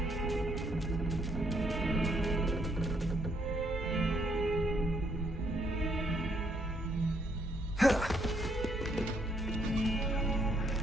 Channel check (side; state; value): both; normal; correlation 0.71